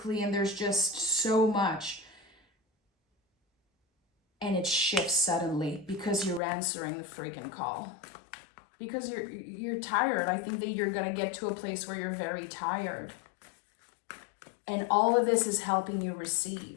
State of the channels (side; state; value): right; drops out; at 6.4 s